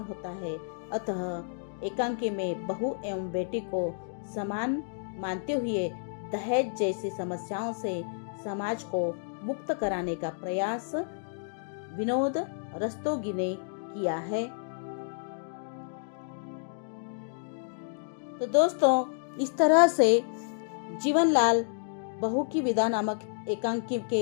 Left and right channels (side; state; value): right; silent; digital silence